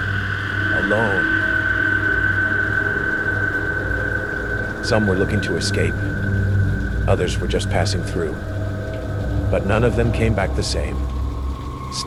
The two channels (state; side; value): identical; both; correlation 1.00